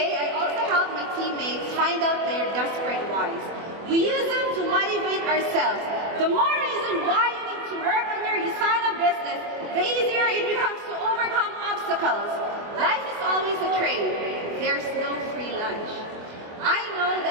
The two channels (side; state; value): left; late; 24 ms